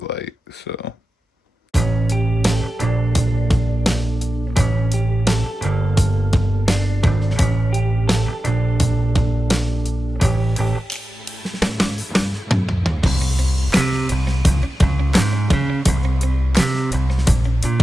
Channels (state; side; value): normal; both; correlation 0.92